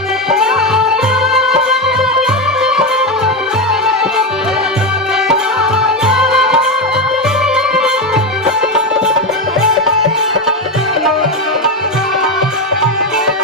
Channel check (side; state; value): both; normal; correlation 0.12